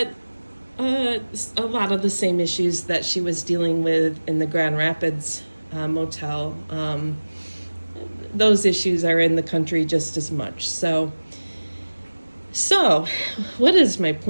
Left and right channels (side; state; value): both; inverted; correlation -1.00